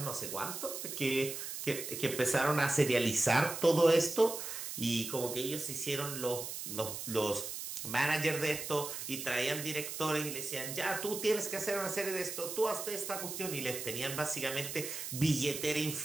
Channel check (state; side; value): noise; right; hiss, 6 dB below the sound